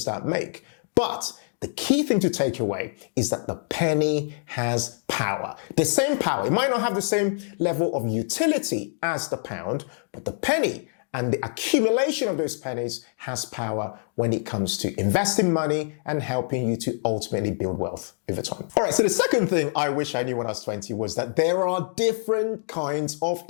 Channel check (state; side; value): silent; right; digital silence